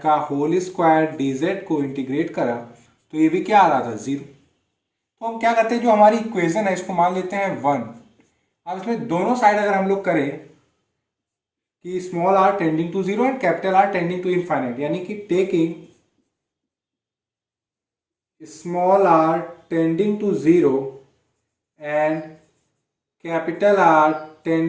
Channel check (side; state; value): both; identical; correlation 1.00